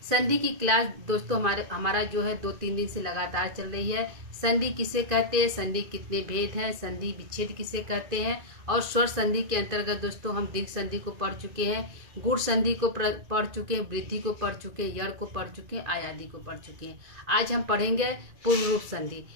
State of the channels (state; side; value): late; left; 2.5 ms